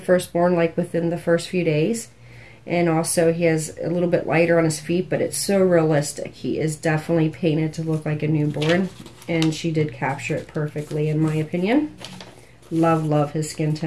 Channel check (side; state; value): both; identical; correlation 1.00